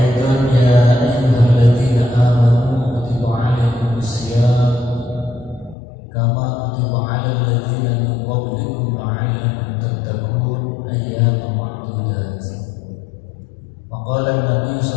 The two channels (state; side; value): drops out; right; at 5.8 s